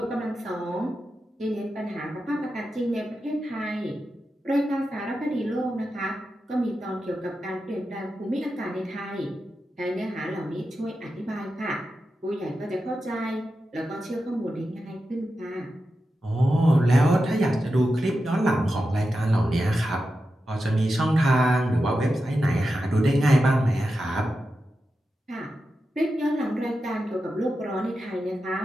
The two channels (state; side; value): normal; both; correlation 0.90